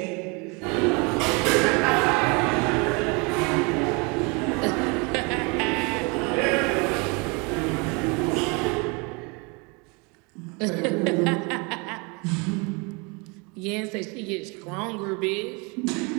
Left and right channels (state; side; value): quieter; left; 30.2 dB